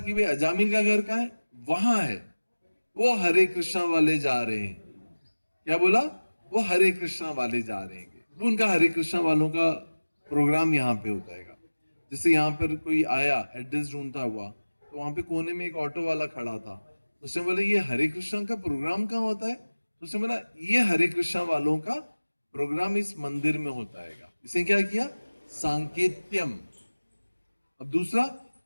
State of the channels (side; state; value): both; inverted; correlation -1.00